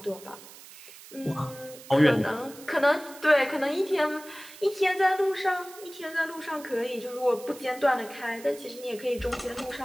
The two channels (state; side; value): noise; right; hiss, 18 dB below the sound